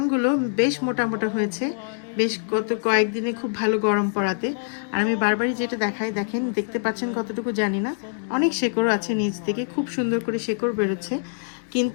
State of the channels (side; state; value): right; silent; 62 dB below the other